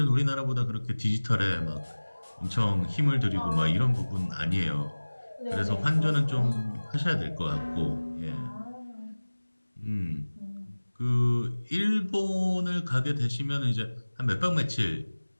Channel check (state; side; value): inverted; both; correlation -1.00